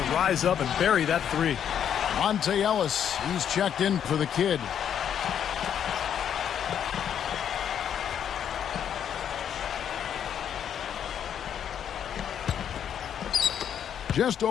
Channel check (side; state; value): right; quieter; 9.0 dB